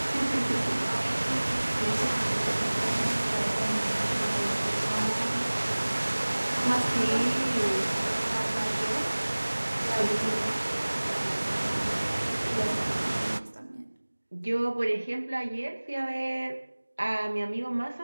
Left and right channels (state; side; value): inverted; both; correlation -1.00